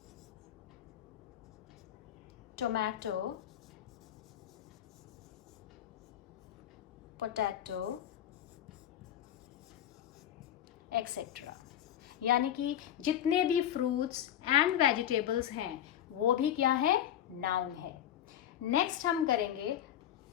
tomato, potato, etc. यानी कि जितने भी फ्रूट्स एंड वेजिटेबल्स हैं वो भी क्या है, नाउन है। नेक्स्ट हम करेंगे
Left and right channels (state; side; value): quieter; right; 10.8 dB